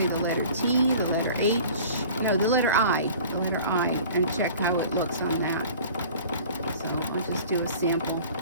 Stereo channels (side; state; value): both; inverted; correlation -0.44